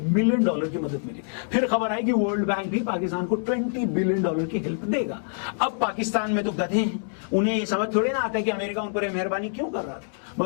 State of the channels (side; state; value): right; silent; 61 dB below the other